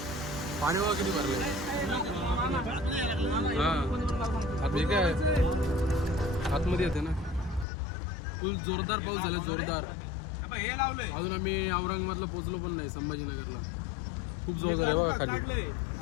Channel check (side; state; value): right; drops out; at 7.7 s